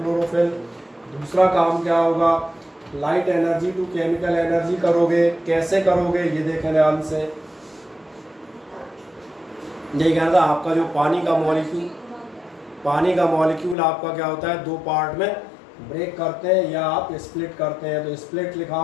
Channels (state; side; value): drops out; right; at 13.8 s